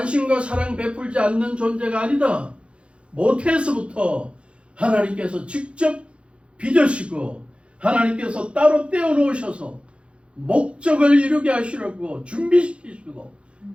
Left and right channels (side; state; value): left; late; 0.059 ms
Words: 사랑 베풀지 않는 존재가 아니다. 모태에서부터 하나님께서 직접 빚으시고 하나님께서 따로 떼어놓으셔서 목적을 이루게 하시려고 준비시키시고